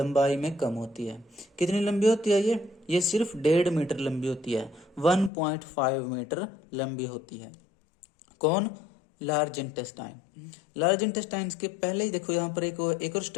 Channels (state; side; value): drops out; right; at 5.3 s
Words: में कम होती है। कितनी लंबी होती है ये सिर्फ 1.5 मीटर लंबी होती है, 1.5 मीटर लंबी होती है। कौन, लार्ज इंटेस्टाइन। लार्ज इंटेस्टाइन के पहले ही देखो यहाँ पर एक और